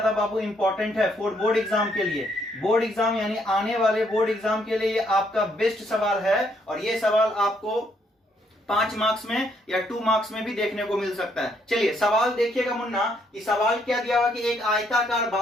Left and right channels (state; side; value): normal; both; correlation 0.71